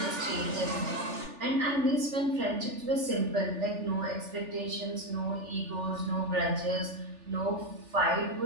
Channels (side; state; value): left; late; 3.4 ms